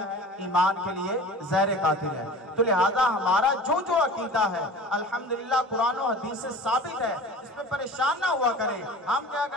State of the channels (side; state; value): both; normal; correlation 0.39